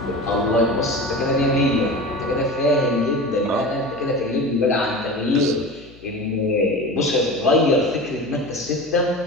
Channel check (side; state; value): left; noise; hum, 24 dB below the sound